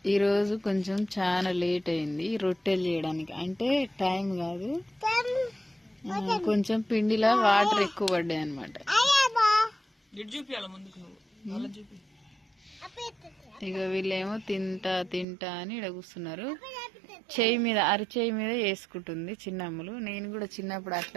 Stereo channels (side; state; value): left; drops out; at 15.2 s